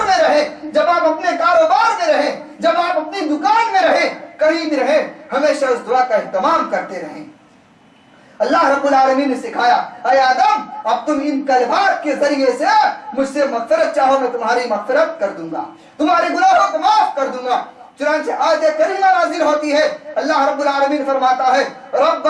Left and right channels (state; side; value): identical; both; correlation 1.00